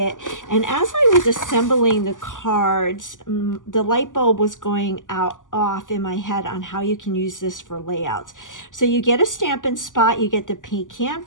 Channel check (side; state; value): right; late; 0.88 ms